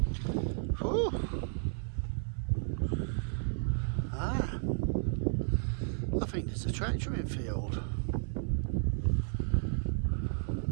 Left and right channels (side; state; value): left; silent; 56 dB below the other